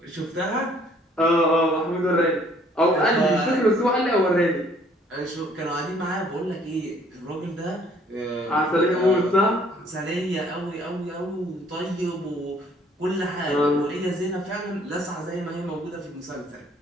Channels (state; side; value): normal; both; correlation 0.60